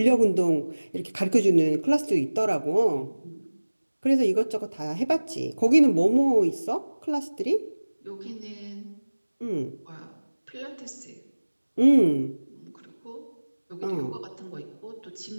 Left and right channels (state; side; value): inverted; both; correlation -1.00